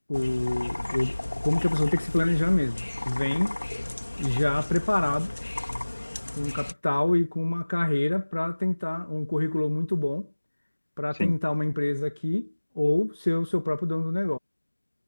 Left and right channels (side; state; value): both; inverted; correlation -1.00